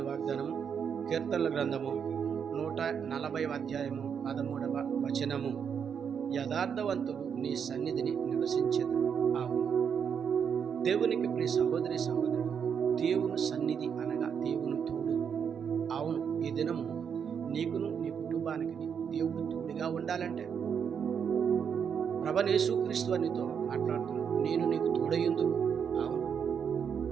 వాగ్దానము కీర్తనల గ్రంథము 140వ అధ్యాయము 13వ వచనము. యథార్థవంతుడు నీ సన్నిధిని నివసించెదరు. అవును, దేవునికి ప్రియ సహోదరి సహోదరుడు, దేవుని సన్నిధి అనగా దేవుని తోడు. అవును, ఈ దినము నీకును నీ కుటుంబానికి దేవుడు తోడుగా ఉండాలంటే ప్రభువైన యేసుక్రీస్తు నీతో మాట్లాడుతున్నాడు. నేను నీకు తోడయ్యుందును. అవును,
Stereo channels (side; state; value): left; quieter; 7.3 dB